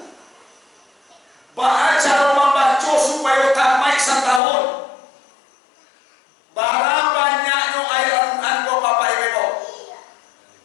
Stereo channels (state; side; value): drops out; right; at 4.4 s